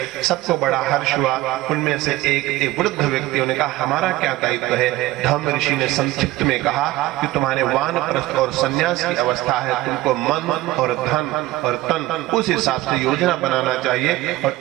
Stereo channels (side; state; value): left; quieter; 17.1 dB